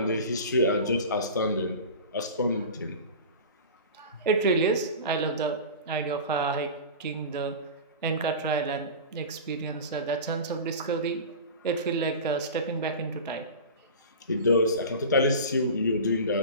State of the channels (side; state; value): both; inverted; correlation -0.32